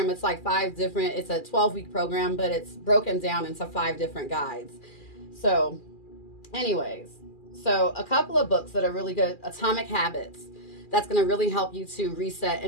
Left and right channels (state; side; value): late; right; 2.4 ms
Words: it's like it's a 12-week program, but it's broken down into 5 different guides. So anyways, so a couple of books that are really good. Atomic Habits. That's going to really help you to reset